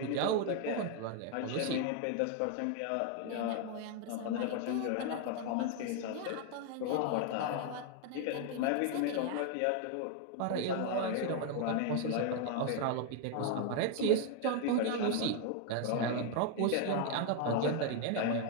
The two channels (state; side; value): different; both; correlation 0.01